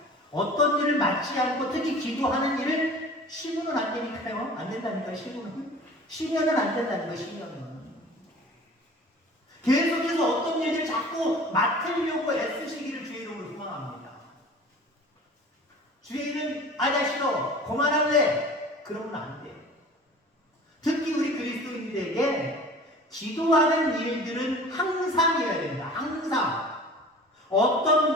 어떤 일을 맡지 않고 특히 기도하는 일을 시무는 안 되니까요. 안 된다니까, 시무는. 시면은 안 된다는 거예요, 시면은. 계속해서 어떤 일을 자꾸 맡으려고 애쓰시기를 주의 이름으로 소망합니다. 주의 이름, 나 싫어. 그만할래. 그러면 안 돼. 특히 우리 그리스도인들에게 기도하는 일들은 항상이어야 됩니다. 항상.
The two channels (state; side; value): normal; both; correlation 0.42